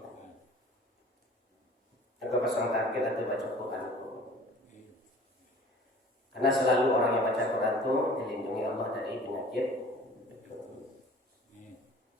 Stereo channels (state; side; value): normal; both; correlation 0.46